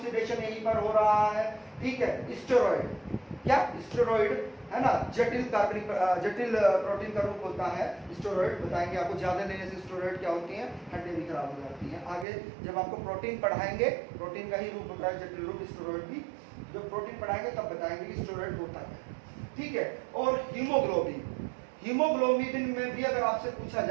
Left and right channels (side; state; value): left; drops out; at 12.2 s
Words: यहीं पर हो रहा है, ठीक है। स्टेरॉइड, क्या? स्टेरॉइड है ना, जटिल प्रोटीन का रूप होता है स्टेरॉइड। बताएंगे आपको, ज्यादा लेने से स्टेरॉइड क्या होती हैं? हड्डियां भी खराब हो जाती हैं। आगे जब आपको प्रोटीन पढ़ाएंगे, प्रोटीन का ही रूप होता है जटिल रूप स्टेरॉइड भी, जब प्रोटीन पढ़ाएंगे तब बताएंगे कि स्टेरॉइड होता है, ठीक है। और हीमोग्लोबिन, हीमोग्लोबिन में भी अगर आपसे पूछा